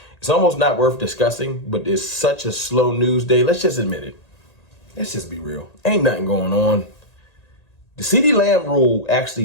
almost not worth discussing. But it's such a slow news day. Let's just admit it. Let's just be real. Ain't nothing going on. The Ceedee Lamb rule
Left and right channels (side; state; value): right; late; 1.9 ms